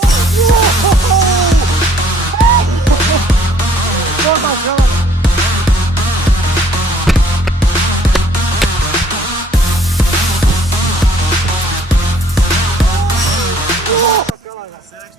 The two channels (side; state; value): both; normal; correlation 0.59